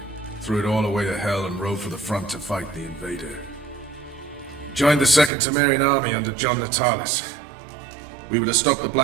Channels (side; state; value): left; drops out; at 5.3 s